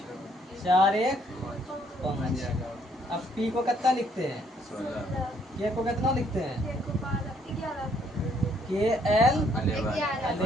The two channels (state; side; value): normal; both; correlation 0.67